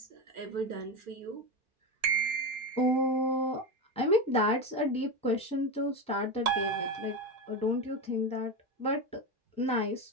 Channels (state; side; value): normal; both; correlation 0.17